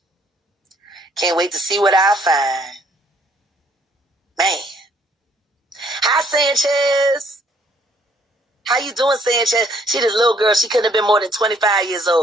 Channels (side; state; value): both; normal; correlation 0.64